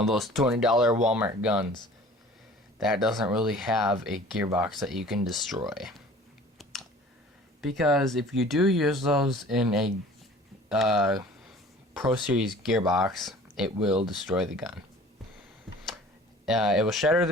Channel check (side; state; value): both; normal; correlation 0.47